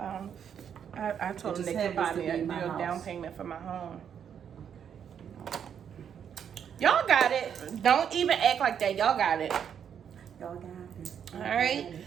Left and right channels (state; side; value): quieter; left; 8.2 dB